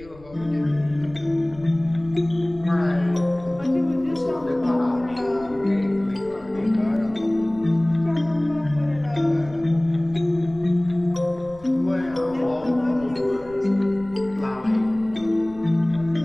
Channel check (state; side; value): noise; left; rumble, 23 dB below the sound